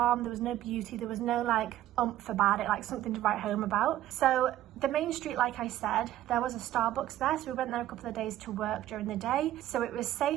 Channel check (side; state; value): left; quieter; 13.5 dB